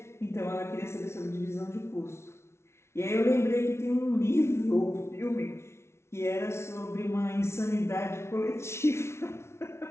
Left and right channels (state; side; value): late; right; 0.13 ms